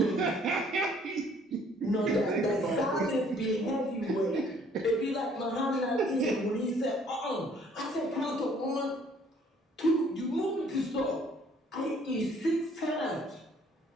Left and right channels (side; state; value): both; normal; correlation 0.60